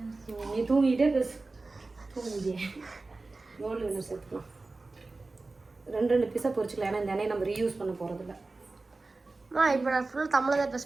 நீ தூங்கிட்டே பேசு, தூங்கிட்டே. கோல்டு வின்னர் சேர்த்துக்கலாம். 2 பீஸாக பொரிச்சிக்கலாம். ஏன்னா இந்த எண்ணெயை நம்ம ரீயூஸ் பண்ண போகிறதில்ல. இப்போ நான் ஃபுல் தமிழில் தான் பேச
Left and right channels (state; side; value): quieter; left; 3.4 dB